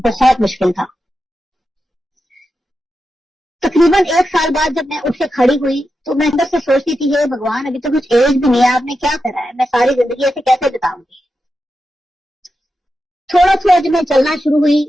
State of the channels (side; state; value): both; normal; correlation 0.89